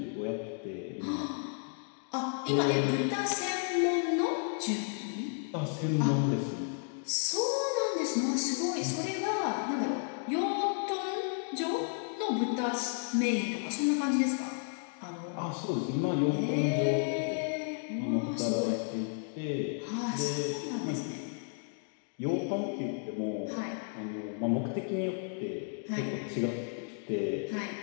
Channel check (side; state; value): right; silent; 56 dB below the other